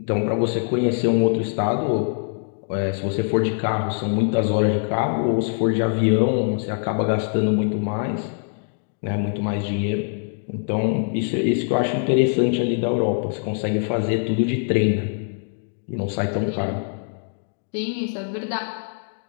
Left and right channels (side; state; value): right; silent; 63 dB below the other